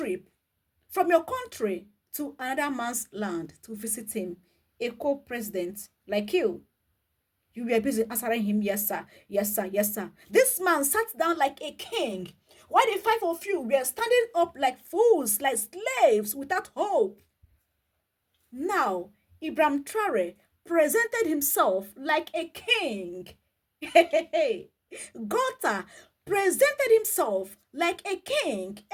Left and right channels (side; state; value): both; identical; correlation 1.00